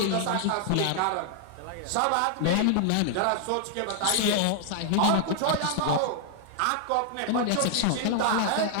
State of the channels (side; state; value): both; different; correlation 0.00